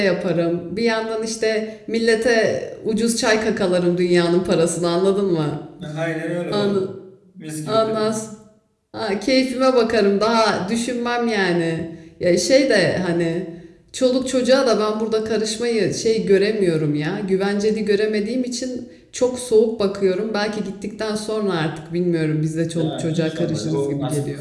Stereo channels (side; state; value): both; identical; correlation 1.00